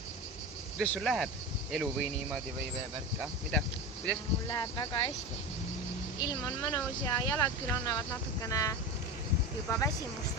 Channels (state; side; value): normal; both; correlation 0.25